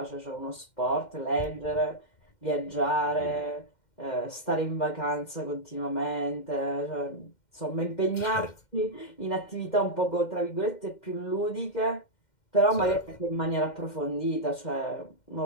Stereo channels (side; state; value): right; late; 2.1 ms